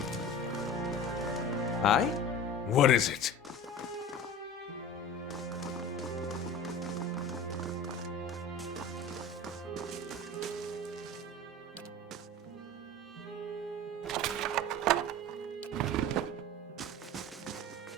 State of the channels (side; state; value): both; normal; correlation 0.34